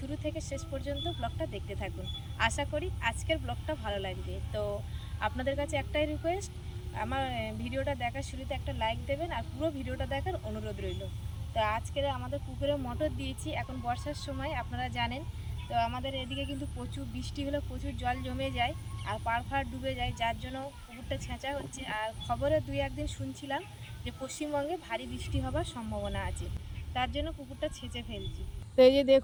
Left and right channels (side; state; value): both; identical; correlation 1.00